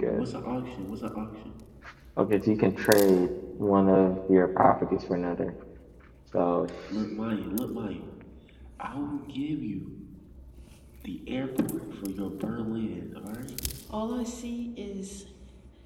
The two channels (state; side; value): identical; both; correlation 1.00